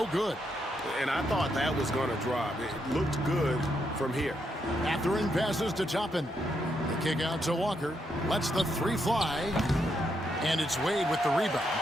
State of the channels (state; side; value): normal; both; correlation 0.79